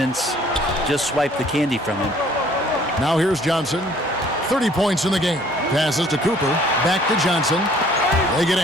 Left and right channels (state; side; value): normal; both; correlation 0.57